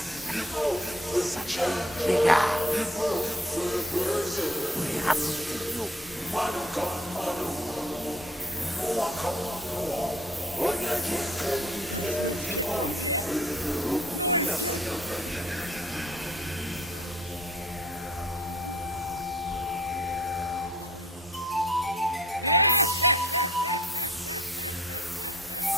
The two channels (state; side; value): normal; both; correlation 0.57